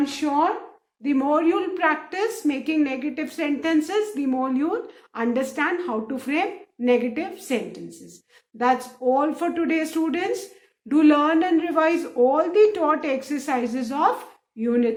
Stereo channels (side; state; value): both; identical; correlation 1.00